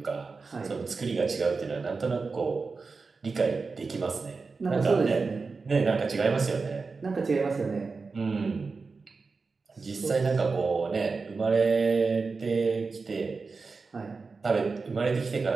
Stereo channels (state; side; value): quieter; left; 4.4 dB